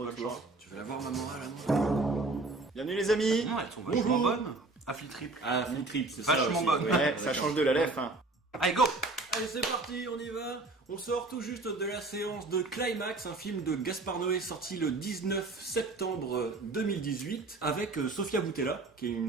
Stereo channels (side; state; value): left; quieter; 3.3 dB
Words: Tu veux la voir, ma morale, à moi? Bienvenue les amis. Non, elles sont vachement bonnes. Affli triple. Ah, Flip Trip, c'est ça. Vachement aussi. bonne. Ouais, ça change de la lèvre. Hein. Allez, go. Allez, c'est parti, on y va. On sort tout juste de la séance de Climax, un film de Gaspard Noé sorti le 19 septembre 2018 avec Sofia Boutella, qui est